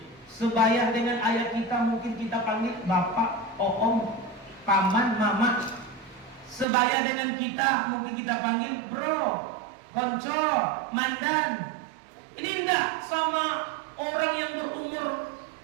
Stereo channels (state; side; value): drops out; left; at 6.7 s